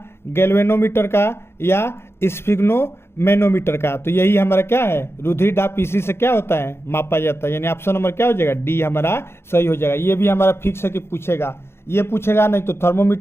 गैल्वेनोमीटर का या स्फिग्नोमेनोमीटर का। तो यही हमारा क्या है, रुधिर दाब इसी से क्या होता है, मापा जाता है, यानी ऑप्शन नंबर क्या हो जाएगा, डी हमारा सही हो जाएगा। ये भी हमारा फिक्स है कि पूछेगा, ये पूछेगा नहीं तो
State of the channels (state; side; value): late; right; 0.12 ms